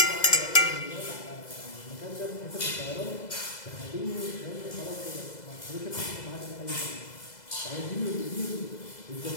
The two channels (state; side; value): late; right; 2.0 ms